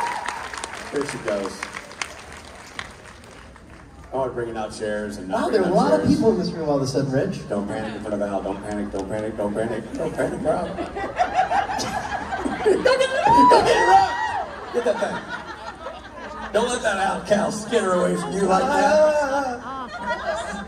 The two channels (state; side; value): identical; both; correlation 1.00